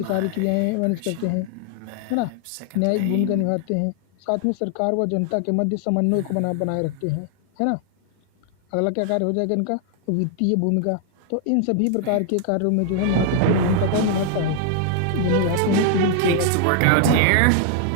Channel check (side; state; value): both; different; correlation 0.00